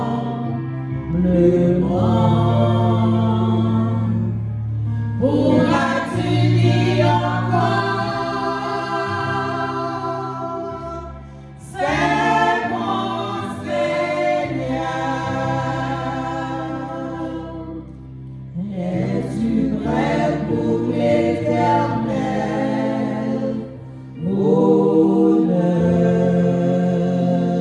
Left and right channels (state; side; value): identical; both; correlation 1.00